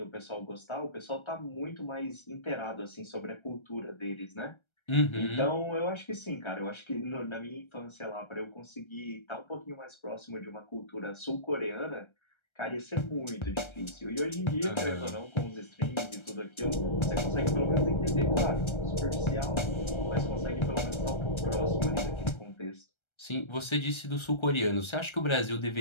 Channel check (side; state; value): right; late; 1.3 ms